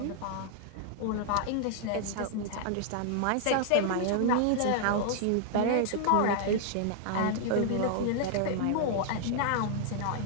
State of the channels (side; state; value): both; different; correlation 0.00